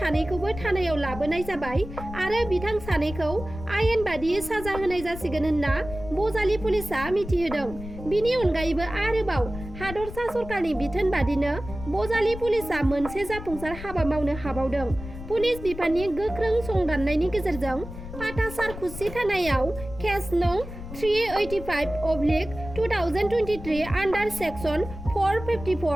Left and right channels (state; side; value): noise; left; rumble, 11 dB below the sound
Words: थानायाव लाबोनाय जाबाय आरो बिथां 2खौ आयेन बादियै साजा होनाय जासिगोन होनना बजालि पुलिसा मिथिहोदों। बिनि अनगायैबो आरोबाव हादरसा सरकारनि बिथोन बादिनो बजालि पुलिसा मोनसे जाफुंसार हाबा मावनो हाबावदों। पुलिस बिफाननि गोख्रों संदाननायनि गेजेरजों पाटासार खुसि थानायाव केस नं 385/2023 आन्डार सेक्सन